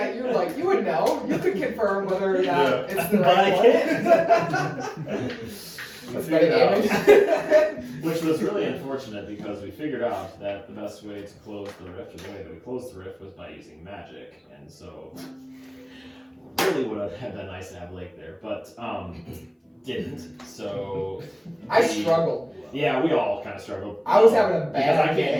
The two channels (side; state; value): both; identical; correlation 1.00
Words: you like you would know. You could confirm whether or not it's the But right I one. can't. That's figured better out. damage. Which was really unfortunate because we figured out that the best way to close the rift, or the way that we closed the rift, was by using magic, and so really would have been nice to have Layk there, but didn't. So I struggled. yeah, we all kind of struggled. I was having a because I bad